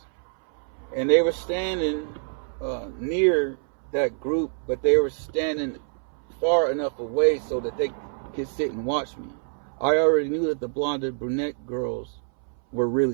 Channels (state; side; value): silent; left; 61 dB below the other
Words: And they were standing near that group, but they were standing far enough away so that they could sit and watch me. I already knew that the blonde and brunette girls were